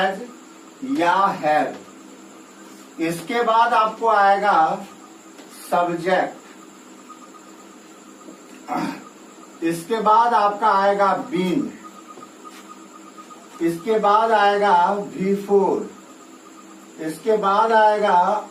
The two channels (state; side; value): identical; both; correlation 1.00